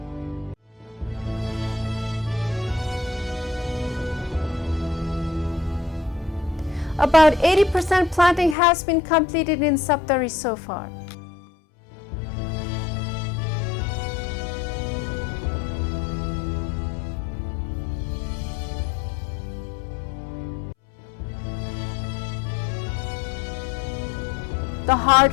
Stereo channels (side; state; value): right; drops out; at 8.6 s